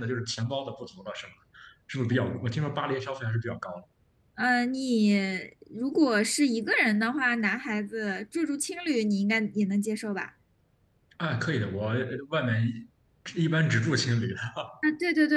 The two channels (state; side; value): identical; both; correlation 1.00